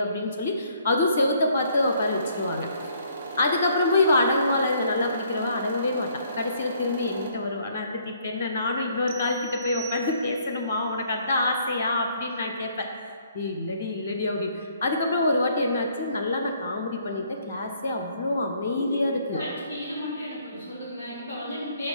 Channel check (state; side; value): inverted; both; correlation -0.65